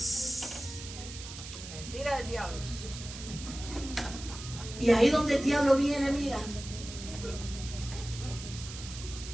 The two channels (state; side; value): noise; right; hiss, 11 dB below the sound